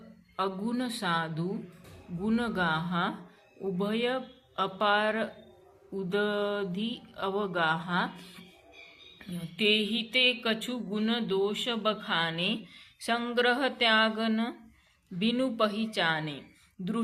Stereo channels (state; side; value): identical; both; correlation 1.00